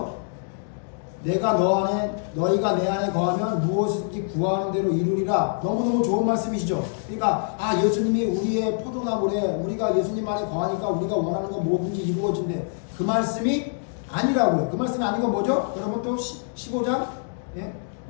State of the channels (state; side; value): silent; right; digital silence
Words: 내가 너희가 내 안에 거하면 무엇이든지 구하는 대로 이루리라. 너무너무 좋은 말씀이시죠? 그러니까 예수님이 우리의 포도나무래. 우리가 예수님 안에 거하니까 우리가 원하는 거 뭐든지 이루어진대. 그 말씀이 아니라고요. 그 말씀이 아니고 뭐죠? 여러분 또 15장, 예?